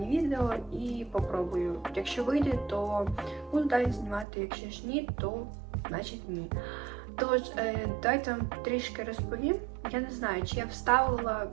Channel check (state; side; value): drops out; left; at 4.2 s